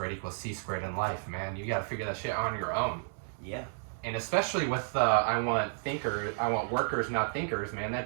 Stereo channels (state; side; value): silent; left; 56 dB below the other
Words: equals c squared in life, man. You got to figure that shit on your own. Yeah. And especially with I want workers, not thinkers, man.